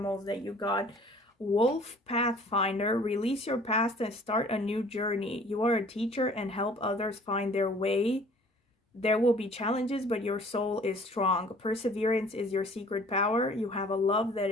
that you got. Wolf Pathfinder, release your past and start a new journey. You are a teacher and help others find their way. There will be challenges, but your soul is strong. Perseverance is your secret power. You have a love that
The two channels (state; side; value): normal; both; correlation 0.52